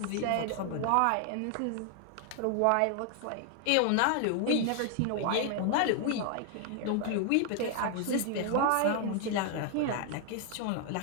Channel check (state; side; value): different; both; correlation 0.00